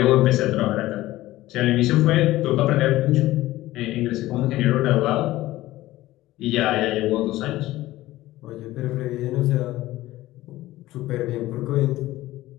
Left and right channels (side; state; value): right; quieter; 16.6 dB